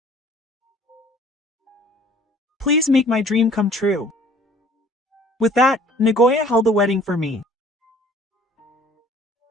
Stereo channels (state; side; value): normal; both; correlation 0.53